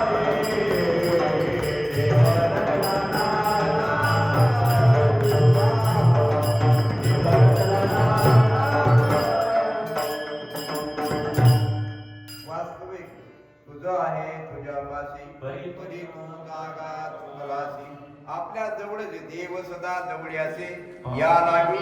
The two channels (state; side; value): identical; both; correlation 1.00